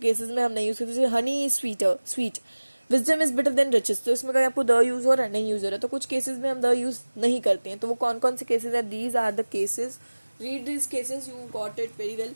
में हम नहीं यूज़ करते, जैसे honey is sweet, wisdom is better than riches, तो इसमें कहीं आपको द यूज़ हो रहा है, नहीं यूज़ हो रहा है, तो कुछ केसेस में हम द यूज़ नहीं करते हैं। तो वो कौन कौन से केसेस हैं, these are the cases, read this cases, you got it very well.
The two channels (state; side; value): inverted; both; correlation -1.00